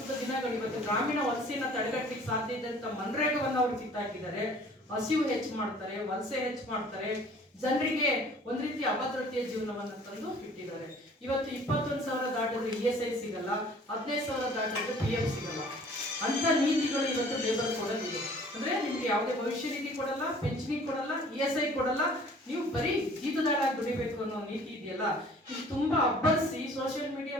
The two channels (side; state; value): both; normal; correlation 0.51